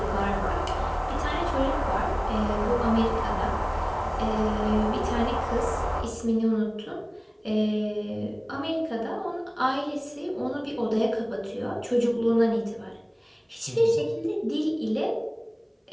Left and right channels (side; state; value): both; identical; correlation 1.00